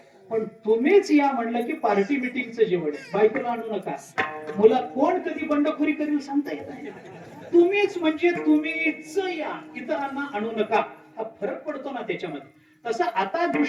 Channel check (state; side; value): identical; both; correlation 1.00